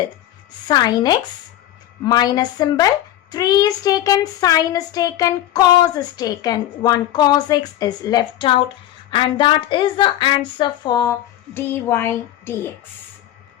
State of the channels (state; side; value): quieter; right; 13.0 dB